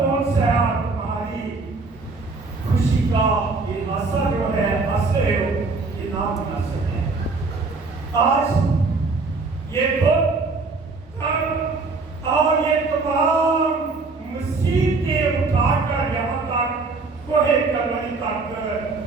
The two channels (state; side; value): quieter; left; 3.9 dB